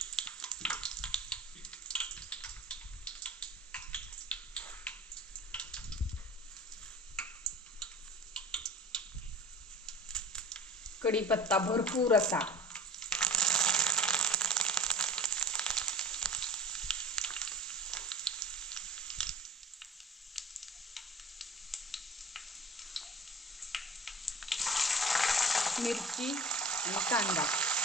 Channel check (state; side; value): normal; both; correlation 0.39